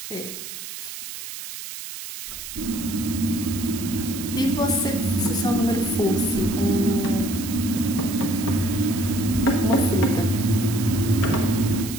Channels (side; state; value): right; noise; hiss, 10 dB below the sound